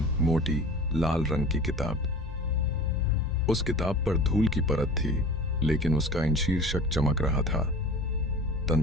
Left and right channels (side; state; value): both; normal; correlation 0.39